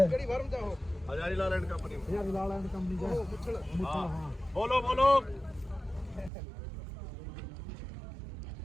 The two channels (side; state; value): left; drops out; at 6.3 s